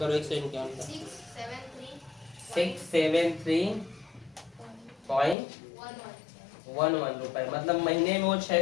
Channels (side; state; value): right; drops out; at 5.4 s